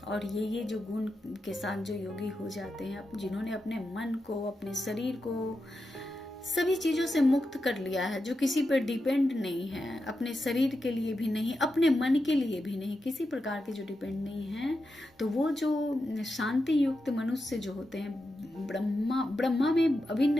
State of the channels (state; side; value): normal; both; correlation 0.89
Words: और ये जो गुण के साथ जो योगी हो जाते हैं, जिन्होंने अपने मन को, अपने शरीर को सभी चीजों से मुक्त कर लिया है, जो किसी पर डिपेंड नहीं है, अपने शरीर के लिए भी नहीं, अपने मन के लिए भी नहीं, किसी प्रकार के जो डिपेंड नहीं है, तो वो जो शांति युक्त मनुष्य जो होते हैं ब्रह्मा में